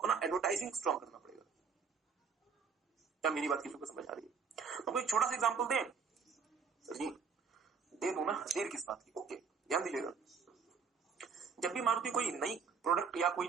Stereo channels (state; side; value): quieter; left; 5.8 dB